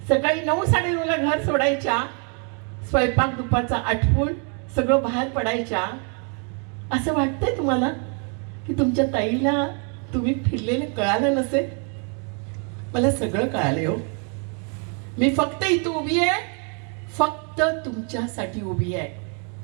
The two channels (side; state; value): left; quieter; 39.3 dB